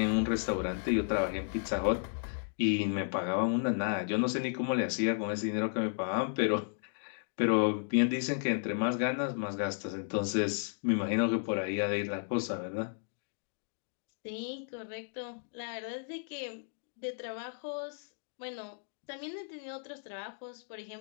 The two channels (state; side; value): silent; right; digital silence